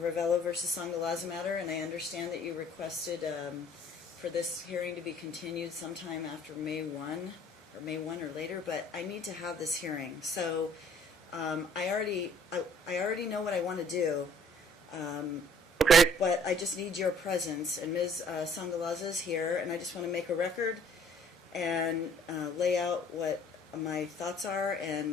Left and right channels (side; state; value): both; normal; correlation 0.56